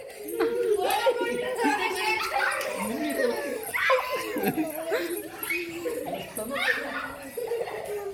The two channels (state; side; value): identical; both; correlation 1.00